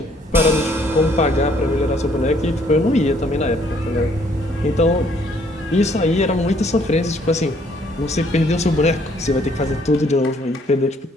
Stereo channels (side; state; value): both; normal; correlation 0.64